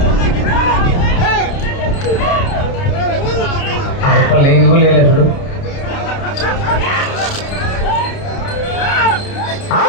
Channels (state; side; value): late; right; 29 ms